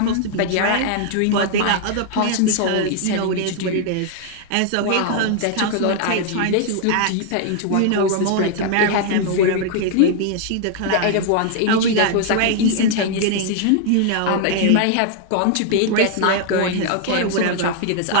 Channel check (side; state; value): both; different; correlation 0.00